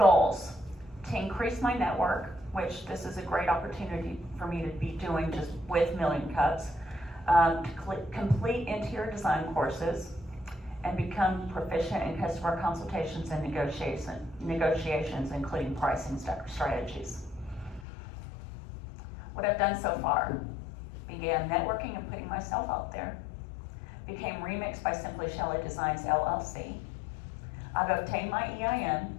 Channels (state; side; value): drops out; right; at 17.9 s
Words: to increase my network, which this is a great opportunity for me to be doing just with Million Cups, to complete interior design courses, and become proficient in customer consultations and negotiations, including pricing strategies. What I've done so far: began networking and putting myself out there, became Remix by Simply Shelly Designs LLC. I've obtained my EIN,